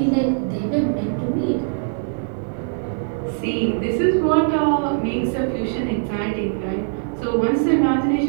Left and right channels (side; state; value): left; silent; digital silence